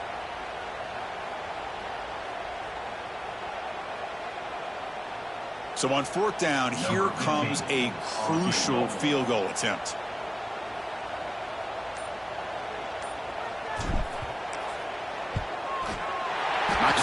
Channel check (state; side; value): identical; both; correlation 1.00